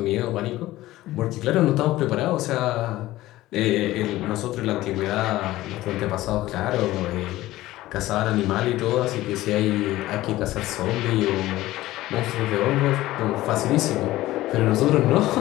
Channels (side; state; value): right; quieter; 16.5 dB